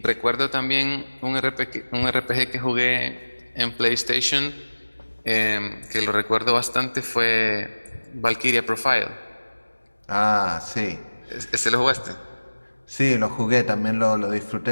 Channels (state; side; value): inverted; both; correlation -1.00